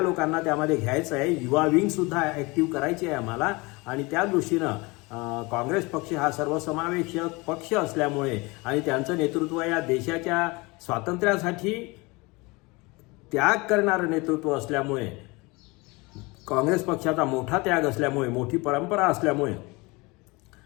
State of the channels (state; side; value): quieter; right; 25.2 dB